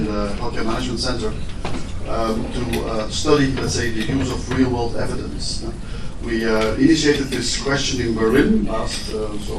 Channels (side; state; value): both; identical; correlation 1.00